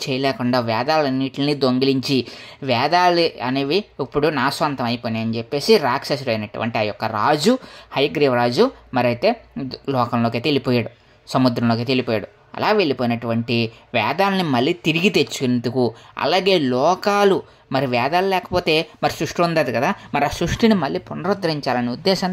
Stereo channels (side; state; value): both; identical; correlation 1.00